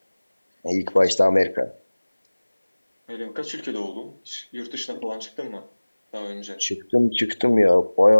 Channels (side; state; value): both; inverted; correlation -1.00